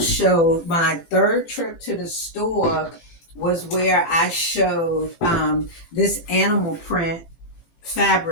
my third trip to the store was where I showed this animal print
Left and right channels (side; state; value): right; late; 18 ms